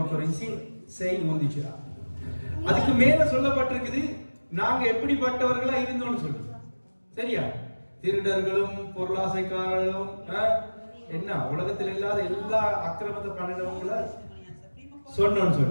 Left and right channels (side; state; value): both; inverted; correlation -1.00